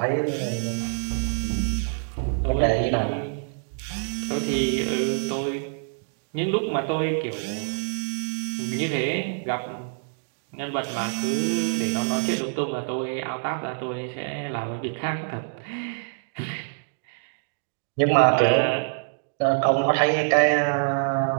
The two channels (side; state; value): left; silent; digital silence